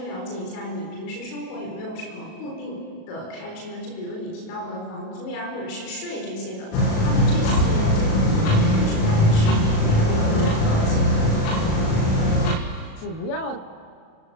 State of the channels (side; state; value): right; late; 37 ms